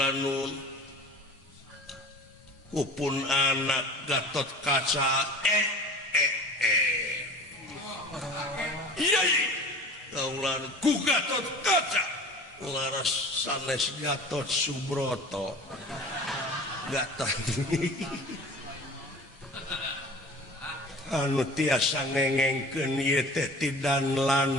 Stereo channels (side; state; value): both; normal; correlation 0.40